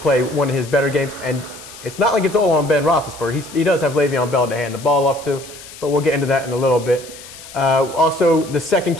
one of his better games, and it's not like it's all on Ben Roethlisberger. He does have Le'Veon Bell to hand the ball off to, but we'll get into that in a little bit. Also, the second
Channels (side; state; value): left; noise; hiss, 17 dB below the sound